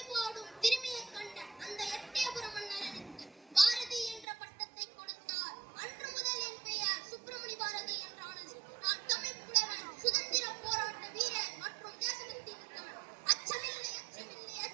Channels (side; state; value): left; drops out; at 4.2 s